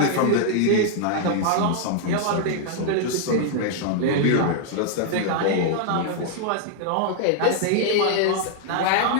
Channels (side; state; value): both; different; correlation 0.00